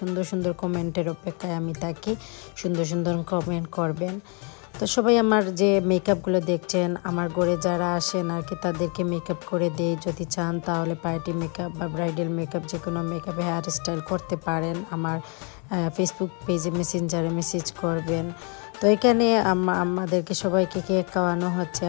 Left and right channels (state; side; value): quieter; right; 35.7 dB